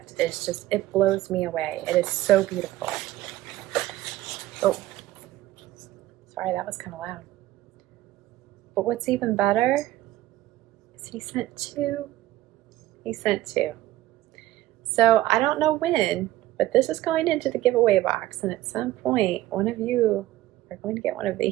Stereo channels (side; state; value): left; quieter; 15.6 dB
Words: is just, it blows me away. It is so beautiful. Oh, sorry, that was kind of loud. But what's even better is he sent two. He sent two. So I don't know when, but this is going into the giveaway box, and at some point, one of you are going to get one of